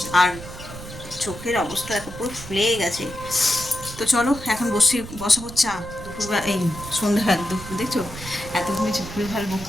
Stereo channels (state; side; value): noise; right; rumble, 13 dB below the sound